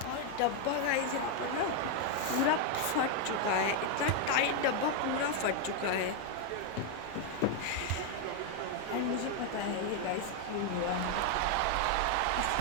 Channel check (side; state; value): both; different; correlation 0.01